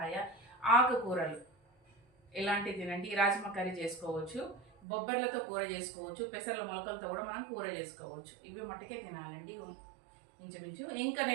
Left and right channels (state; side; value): drops out; left; at 4.7 s